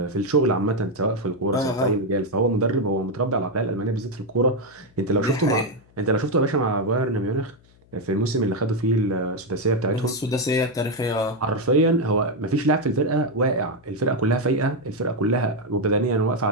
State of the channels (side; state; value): left; noise; hum, 29 dB below the sound